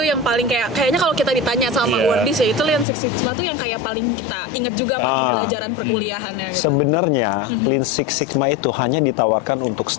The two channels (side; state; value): right; drops out; at 2.9 s